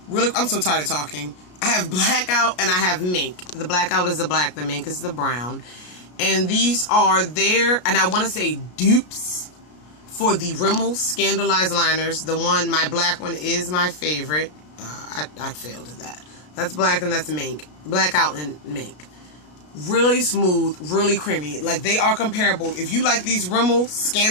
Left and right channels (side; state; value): right; late; 33 ms